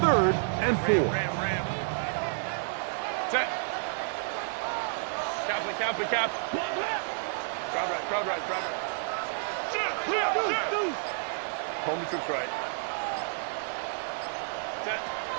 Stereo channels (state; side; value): silent; left; 58 dB below the other